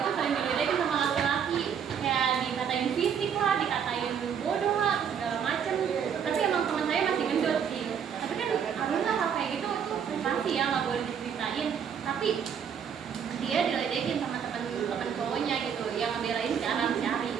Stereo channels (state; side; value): quieter; left; 7.7 dB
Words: sering diledekin sama laki-laki, kayak dikatain fisik lah, dikatain bodoh lah, segala macem. Tapi emang teman saya masih gendut sih. Tapi kan alhamdulillah hal kayak gitu itu pasti ya nggak boleh diceritain. Tapi dia diledekin sama teman cowoknya gitu, yang ngebelain si Ara si Ari.